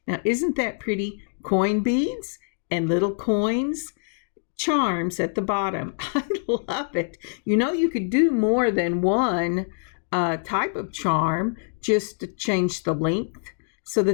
Now, isn't that pretty? Coin beads and little coins, charms at the bottom. I love it. You know, you could do more than one type of charm just to change the length so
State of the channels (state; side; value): silent; right; digital silence